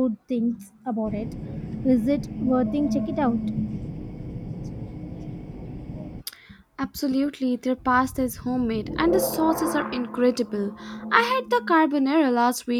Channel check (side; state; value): both; identical; correlation 1.00